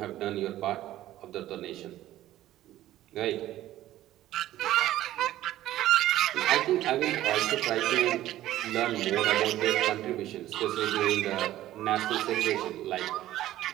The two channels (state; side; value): quieter; left; 14.1 dB